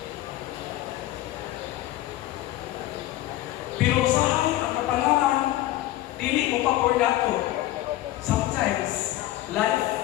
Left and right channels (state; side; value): quieter; right; 15.4 dB